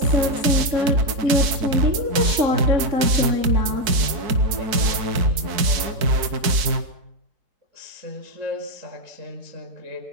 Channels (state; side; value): late; left; 4.5 ms